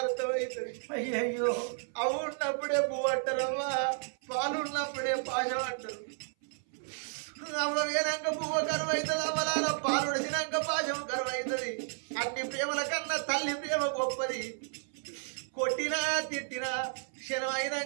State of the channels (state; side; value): silent; left; 56 dB below the other